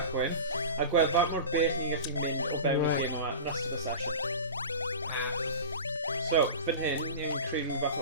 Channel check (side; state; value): both; inverted; correlation -0.32